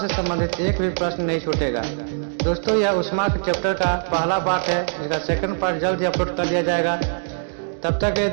संबंधित एक भी प्रश्न नहीं छूटेगा। दोस्तों, यह उष्मा के चैप्टर का पहला पार्ट है, इसका सेकंड पार्ट जल्द ही अपलोड कर दिया जाएगा। तब तक के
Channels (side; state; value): left; silent; digital silence